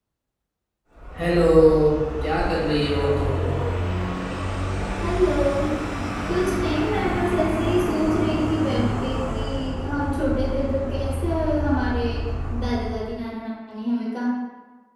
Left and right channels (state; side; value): identical; both; correlation 1.00